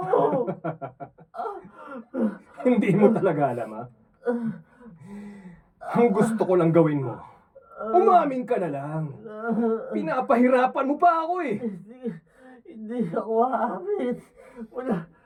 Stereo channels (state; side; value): identical; both; correlation 1.00